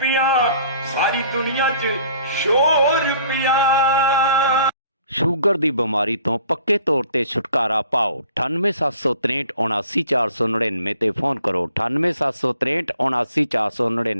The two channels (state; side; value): inverted; both; correlation -0.55